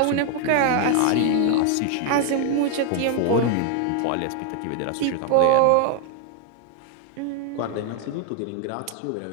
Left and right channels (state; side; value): different; both; correlation 0.00